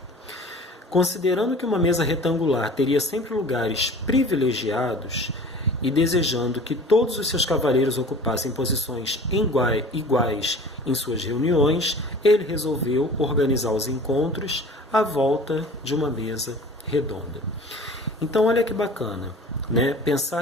Considerando que uma mesa retangular teria sempre lugares privilegiados e desejando que todos os seus cavaleiros ocupassem posições iguais em suas reuniões, ele resolveu organizar os encontros à volta de uma mesa redonda. Então, olha que bacana, né?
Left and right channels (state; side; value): normal; both; correlation 0.43